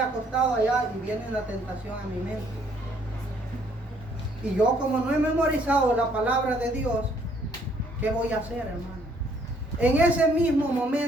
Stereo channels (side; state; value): both; normal; correlation 0.65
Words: allá y viene la tentación a mi mente. Y yo, como no he memorizado la palabra de Dios, ¿qué voy a hacer, hermano? En ese mismo